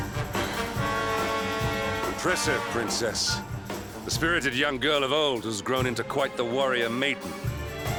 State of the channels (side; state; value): both; identical; correlation 1.00